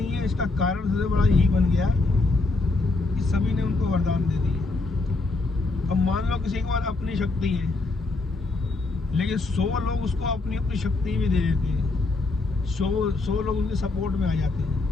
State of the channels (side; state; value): right; quieter; 3.4 dB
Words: है। इसका कारण सबसे बड़ा यही बन गया कि सभी ने उनको वरदान दे दिए। अब मान लो किसी के पास अपनी शक्ति है, लेकिन 100 लोग उसको अपनी अपनी शक्ति भी दे देते हैं। 100 लोग उनके सपोर्ट में आ जाते